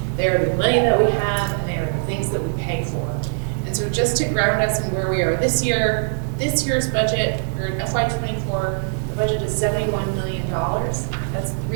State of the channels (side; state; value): left; silent; digital silence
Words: They are the money that we have, and they are the things that we pay for. And so just to ground us in where we are this year, this year's budget, or in FY24, the budget is $71 million. That's